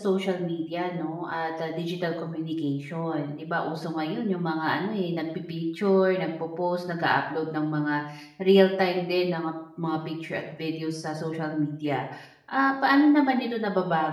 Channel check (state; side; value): identical; both; correlation 1.00